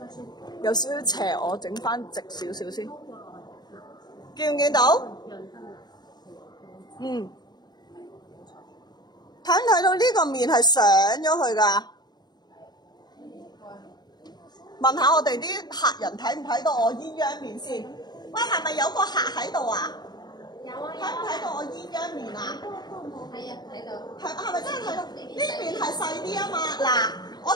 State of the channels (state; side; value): late; right; 0.20 ms